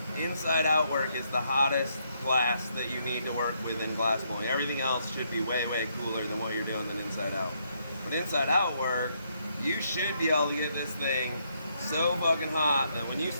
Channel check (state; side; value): inverted; both; correlation -0.74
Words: inside out work is the hottest glass that you need to work with in glass blowing. Everything else should be way, way cooler than what you're doing than inside out. But inside out work, you should be able to get this thing so fucking hot that when you